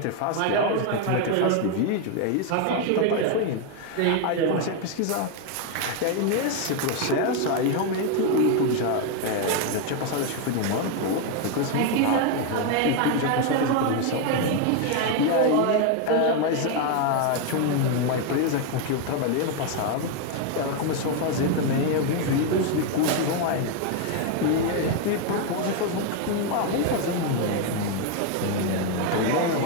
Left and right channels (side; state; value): both; different; correlation 0.01